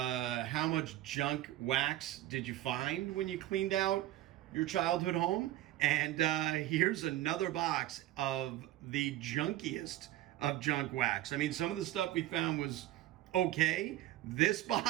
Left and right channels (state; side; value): quieter; left; 14.6 dB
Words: how much junk wax did you find when you cleaned out your childhood home? And here's another box of the junkiest of junk wax. I mean, some of the stuff we found was okay. This